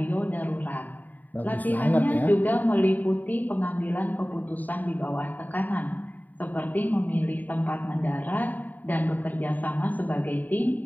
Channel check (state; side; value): late; right; 0.085 ms